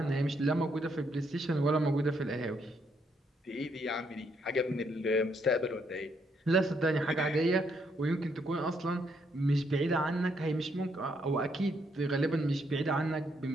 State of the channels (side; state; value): both; normal; correlation 0.74